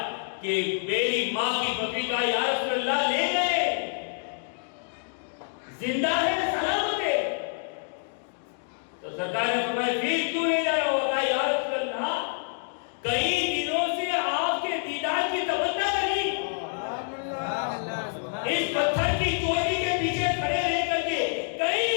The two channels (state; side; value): silent; right; digital silence